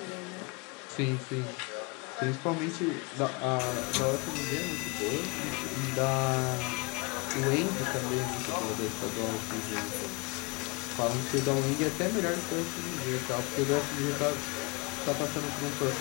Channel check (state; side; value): quieter; right; 28.6 dB